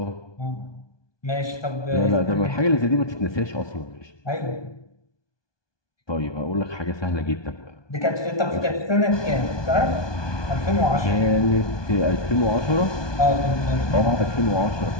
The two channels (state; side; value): late; right; 1.2 ms